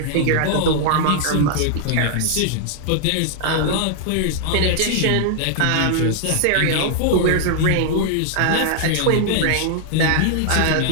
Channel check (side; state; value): both; different; correlation 0.00